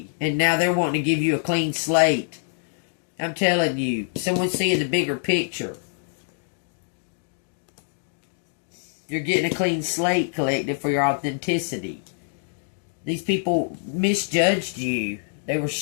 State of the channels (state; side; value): silent; right; digital silence